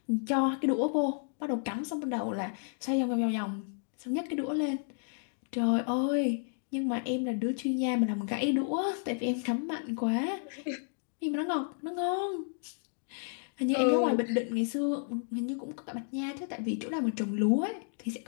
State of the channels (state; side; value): silent; right; digital silence